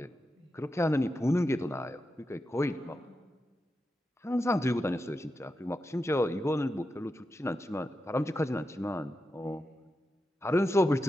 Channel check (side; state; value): both; normal; correlation 0.89